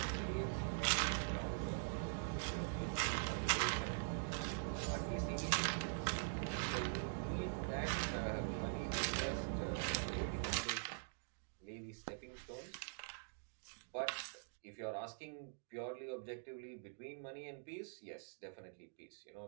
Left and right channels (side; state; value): left; silent; digital silence